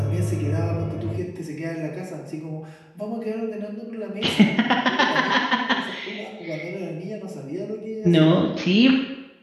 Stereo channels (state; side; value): identical; both; correlation 1.00